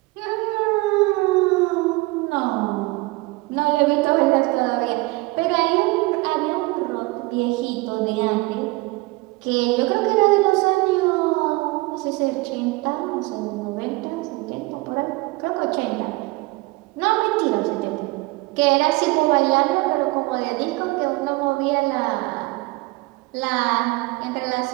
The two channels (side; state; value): left; quieter; 22.9 dB